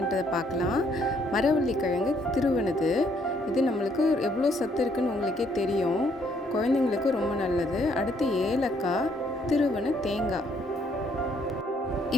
பார்க்கலாம். மரவள்ளி கிழங்கு திருவனது, இது நம்மளுக்கு எவ்வளோ சத்து இருக்குன்னு உங்களுக்கே தெரியும். குழந்தைங்களுக்கு ரொம்ப நல்லது. அடுத்து ஏலக்காய், திருவன தேங்காய்.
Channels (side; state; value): both; normal; correlation 0.68